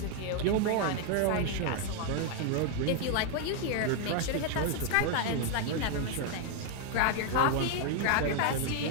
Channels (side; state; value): both; different; correlation 0.00